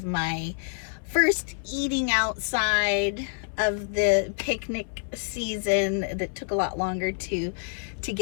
my first eating outside of the picnic season that took a lot longer to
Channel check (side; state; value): right; silent; 60 dB below the other